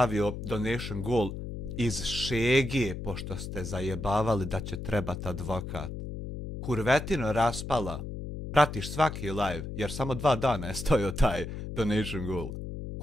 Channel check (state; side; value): noise; left; hum, 7 dB below the sound